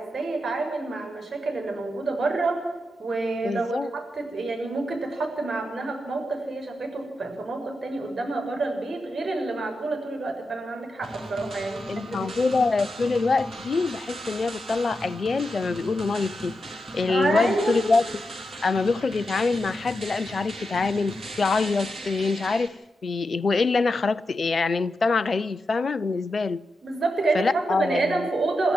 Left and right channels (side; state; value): both; normal; correlation 0.88